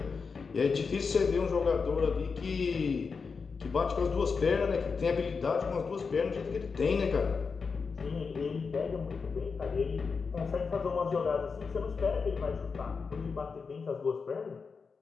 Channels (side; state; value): right; quieter; 5.1 dB